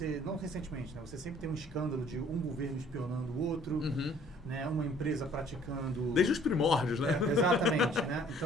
né? Você sempre tem um escândalo de um governo espionando o outro, né? Uma empresa praticando... Desde os primórdios, né? Exatamente. Né?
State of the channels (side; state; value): both; normal; correlation 0.57